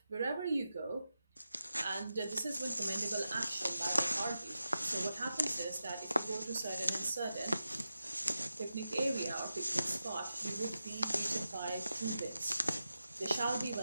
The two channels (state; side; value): inverted; both; correlation -0.91